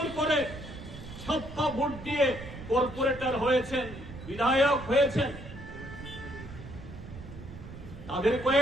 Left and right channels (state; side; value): noise; right; rumble, 13 dB below the sound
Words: করে ছাপ্পা ভোট দিয়ে কর্পোরেটর হয়েছেন, বিধায়ক হয়েছেন। তাদের